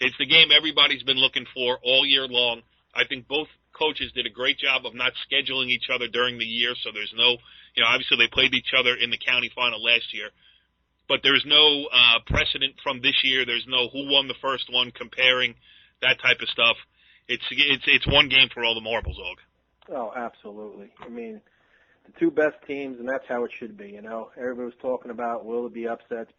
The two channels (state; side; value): identical; both; correlation 1.00